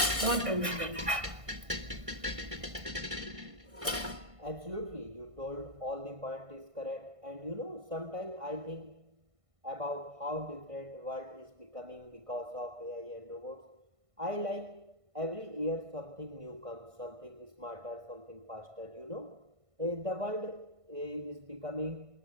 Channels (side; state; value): left; late; 1.5 ms